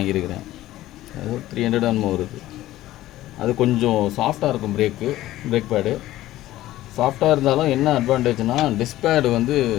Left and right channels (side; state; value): right; quieter; 15.2 dB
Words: அது 300 என்னமோ வருது. அது கொஞ்சம் சாஃப்டாக இருக்கும். பிரேக் பேடு சாஃப்டாக இருந்தாலும் என்ன அட்வான்டேஜ்னால் டிஸ்க் பேடு வந்து